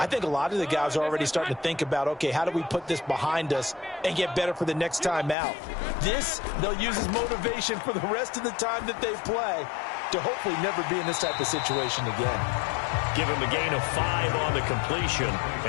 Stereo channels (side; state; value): right; drops out; at 5.4 s